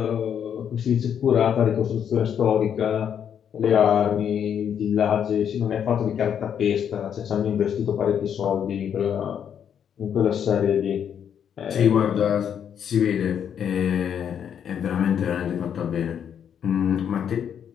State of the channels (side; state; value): right; quieter; 8.5 dB